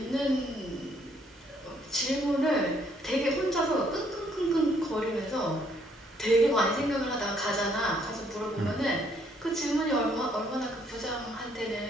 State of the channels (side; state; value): both; normal; correlation 0.67